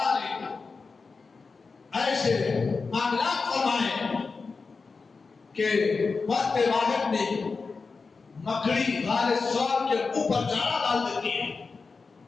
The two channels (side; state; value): right; quieter; 4.5 dB